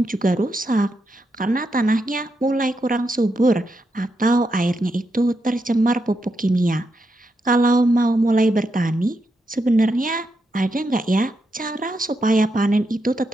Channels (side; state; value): both; normal; correlation 0.83